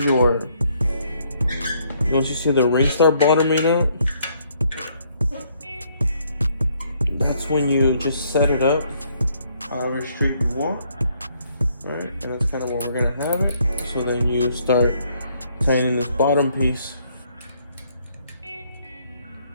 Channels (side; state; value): both; inverted; correlation -0.68